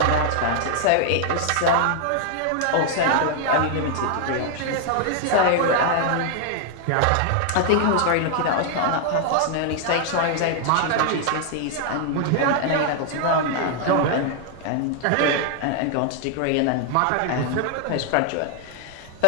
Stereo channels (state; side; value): different; both; correlation 0.00